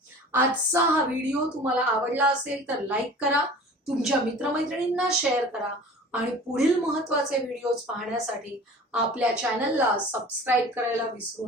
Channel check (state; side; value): normal; both; correlation 0.42